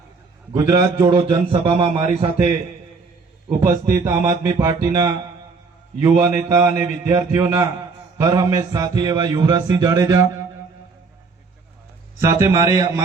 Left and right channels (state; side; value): quieter; left; 4.5 dB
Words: ગુજરાત જોડો જનસભામાં મારી સાથે ઉપસ્થિત આમ આદમી પાર્ટીના યુવા નેતા અને વિદ્યાર્થીઓના હર હંમેશ સાથી એવા યુવરાજસિંહ જાડેજા, સાથે